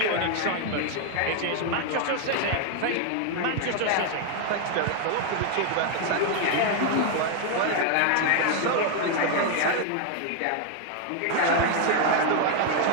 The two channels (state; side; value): different; both; correlation 0.00